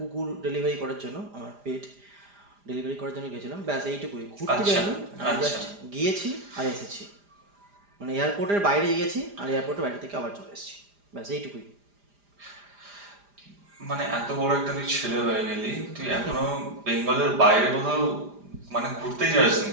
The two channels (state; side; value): late; left; 4.9 ms